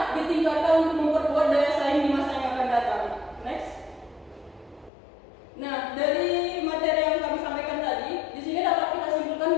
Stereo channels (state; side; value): drops out; right; at 4.9 s